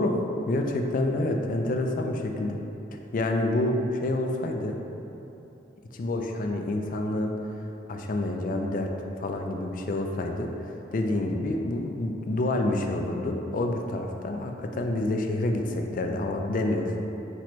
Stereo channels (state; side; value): normal; both; correlation 0.61